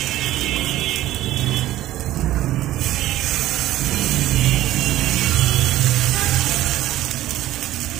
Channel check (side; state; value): left; quieter; 14.6 dB